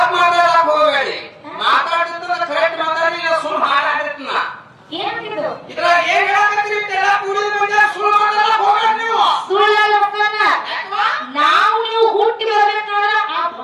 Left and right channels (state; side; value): identical; both; correlation 1.00